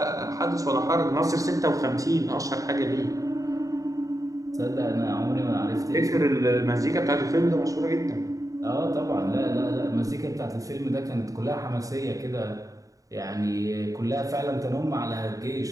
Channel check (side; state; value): left; late; 0.16 ms